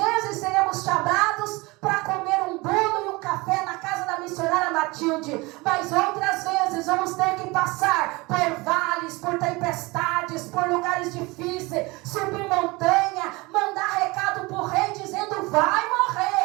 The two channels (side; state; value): left; quieter; 23.8 dB